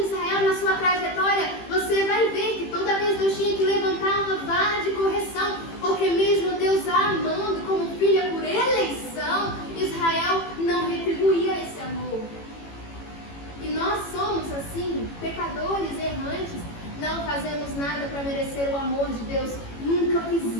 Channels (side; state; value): right; late; 18 ms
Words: Israel, na sua trajetória, você vai ver que toda vez Deus tinha que levantar uma vara de correção, porque mesmo Deus a amando como filha por eleição, Israel não retribuía esse amor. E nós somos assim, pecadores, errantes, não fazemos nada para merecer o amor de Deus, nunca